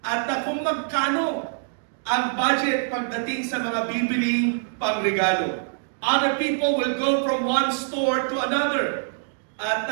at kung magkano ang budget pagdating sa mga bibiling pangregalo. Other people will go from one store to another at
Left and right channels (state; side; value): silent; left; digital silence